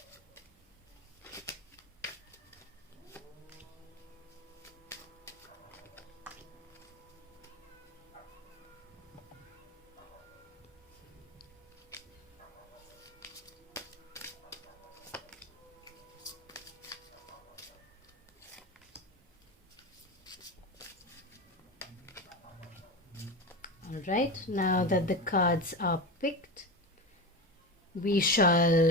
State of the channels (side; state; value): both; normal; correlation 0.22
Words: Alright, now that the cards are picked, we